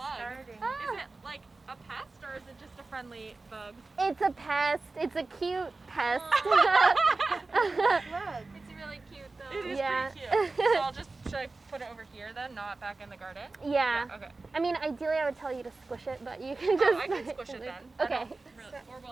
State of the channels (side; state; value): left; quieter; 3.5 dB